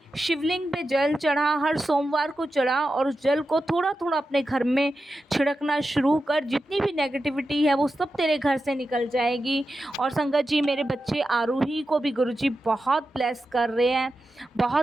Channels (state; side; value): normal; both; correlation 0.91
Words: शिवलिंग पे जल चढ़ा, हर सोमवार को चढ़ा और उस जल को थोड़ा थोड़ा अपने घर में छिड़कना शुरू कर, जितनी भी नेगेटिविटी है वो सब तेरे घर से निकल जाएगी। और संगत जी मेरे बच्चे आरूही को भी गुरुजी बहुत ब्लेस कर रहे हैं,